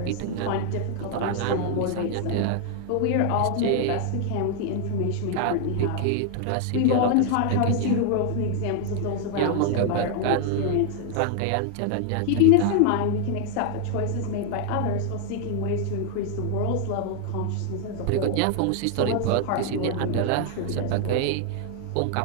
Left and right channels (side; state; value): both; different; correlation 0.00